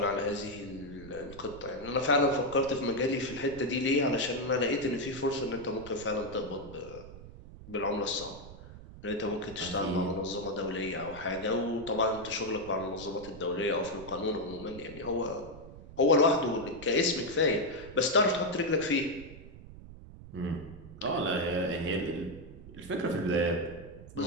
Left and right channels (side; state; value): right; noise; rumble, 16 dB below the sound